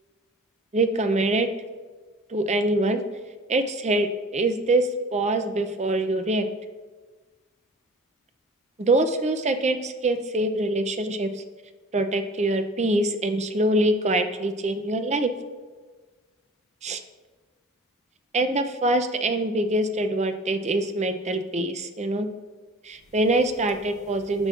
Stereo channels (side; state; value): both; normal; correlation 0.44